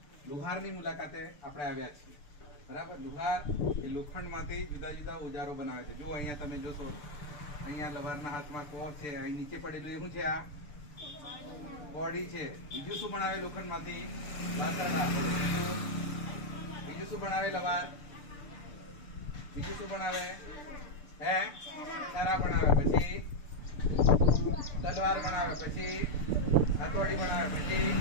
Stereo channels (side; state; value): right; late; 6.8 ms